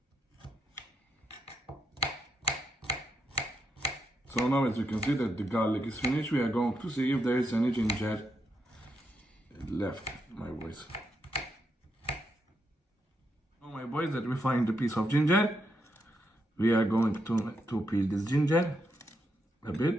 So now, as you can see that the garlic is finished, we are going to see if there is any ginger left, my boys. Now, my boys, that we find a piece of ginger, we are going to peel this ginger a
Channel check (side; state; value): both; normal; correlation 0.81